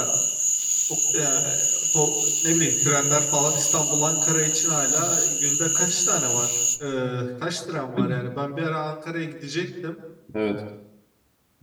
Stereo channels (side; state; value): both; identical; correlation 1.00